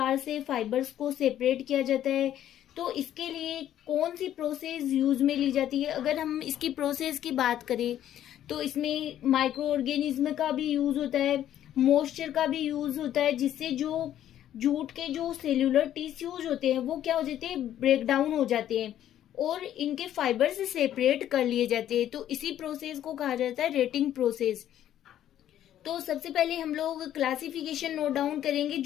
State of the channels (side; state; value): right; quieter; 11.5 dB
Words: से फाइबर्स को सेपरेट किया जाता है। तो इसके लिए कौन सी प्रोसेस यूज में ली जाती है। अगर हम इसकी प्रोसेस की बात करें तो इसमें माइक्रो ऑर्गेनिज्म का भी यूज होता है, मॉइस्चर का भी यूज होता है, जिससे जो जूट के जो सेल्यूलर टिश्यूज होते हैं वो क्या हो जाते हैं, ब्रेक डाउन हो जाते हैं और इनके फाइबर से सेपरेट कर लिए जाते हैं। तो इसी प्रोसेस को कहा जाता है रेटिंग प्रोसेस। तो सबसे पहले हम लोग क्लासिफिकेशन नोट डाउन करेंगे